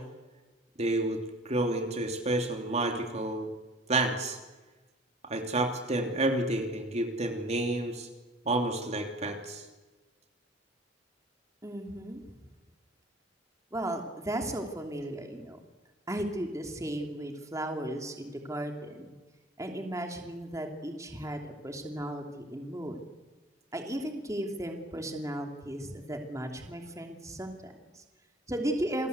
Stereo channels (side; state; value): both; normal; correlation 0.47